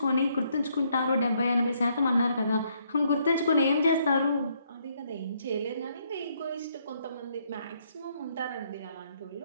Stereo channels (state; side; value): inverted; both; correlation -0.71